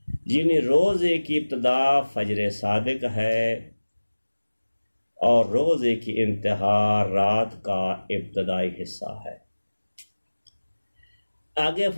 یعنی روزے کی ابتدا فجر صادق ہے اور روزے کی انتہا رات کا ابتدائی حصہ ہے۔ آگے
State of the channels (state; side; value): inverted; both; correlation -1.00